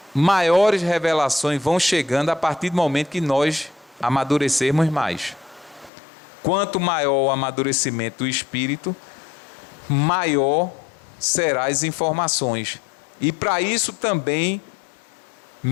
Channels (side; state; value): right; drops out; at 5.9 s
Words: maiores revelações vão chegando a partir do momento que nós amadurecermos mais. Quanto maior o amadurecimento do espírito, maior serão as informações. E para isso também,